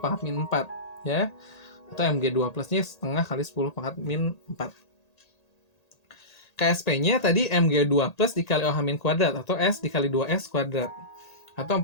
pangkat min 4 ya. Atau Mg2 plusnya setengah kali 10 pangkat min 4. KSP-nya tadi Mg2 plus dikali OH min kuadrat, atau S dikali 2S kuadrat. Atau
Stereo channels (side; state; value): right; late; 1.8 ms